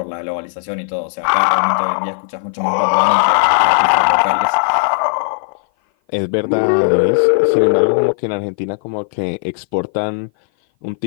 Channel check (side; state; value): right; silent; 57 dB below the other